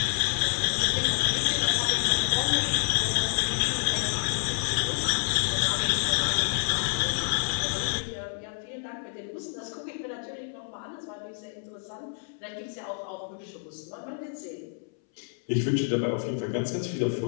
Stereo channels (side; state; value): right; silent; 59 dB below the other